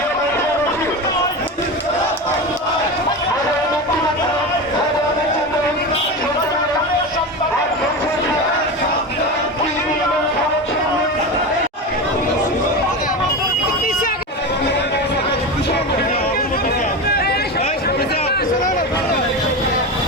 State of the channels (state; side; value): normal; both; correlation 0.23